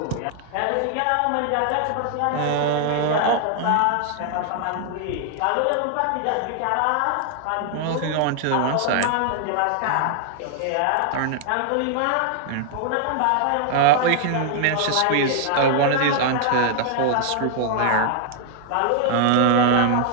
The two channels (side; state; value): both; different; correlation 0.00